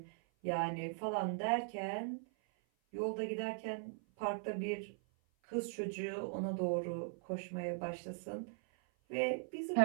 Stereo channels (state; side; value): silent; left; 51 dB below the other